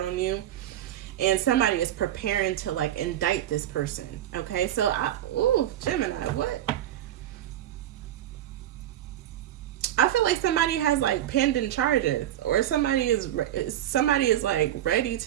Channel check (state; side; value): quieter; left; 12.3 dB